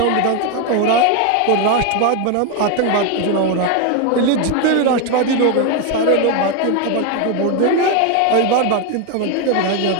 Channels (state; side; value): different; both; correlation 0.02